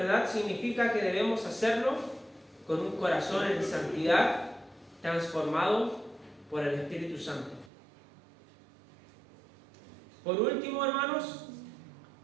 significa que debemos hacerlo con un corazón en santidad, transformado por el Espíritu Santo. Por último, hermanos,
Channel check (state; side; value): drops out; left; at 7.7 s